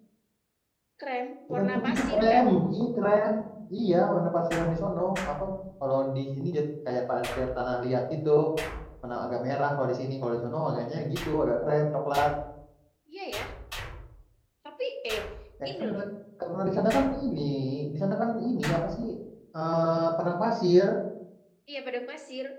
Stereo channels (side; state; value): both; identical; correlation 1.00